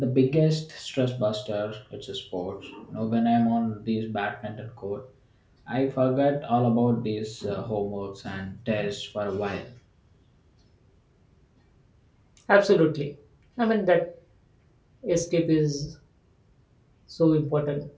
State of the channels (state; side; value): identical; both; correlation 1.00